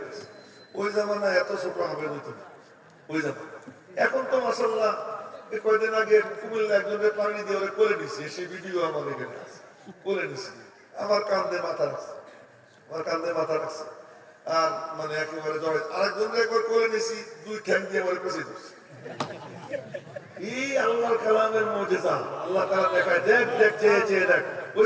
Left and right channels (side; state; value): both; identical; correlation 1.00